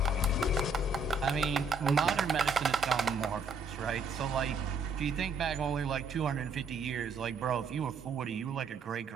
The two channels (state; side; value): quieter; left; 3.6 dB